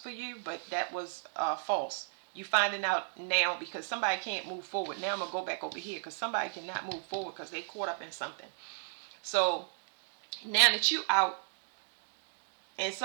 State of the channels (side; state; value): left; silent; digital silence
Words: for you, but that was false. You finding out now because somebody can't move forward. Now I'm gonna go back over here because somebody cannot move forward because they caught up in something. So now that you out and